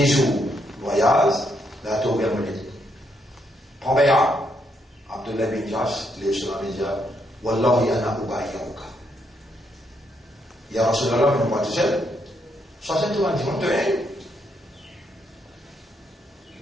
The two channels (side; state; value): both; normal; correlation 0.76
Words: jours voyage, la tour Bermude. Prends bien, Abdullah bin Jash, les sur la média, Wallahi ana ubayyauka. Il y a Rasulallah, mais on va tout seul. Ça, c'est tout un dimanche de haine.